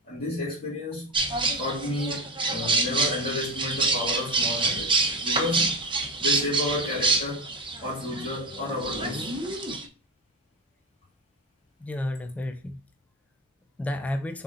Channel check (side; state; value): both; normal; correlation 0.22